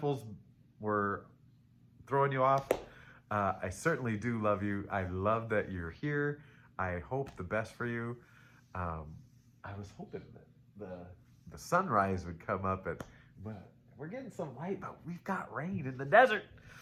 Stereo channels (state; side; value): identical; both; correlation 1.00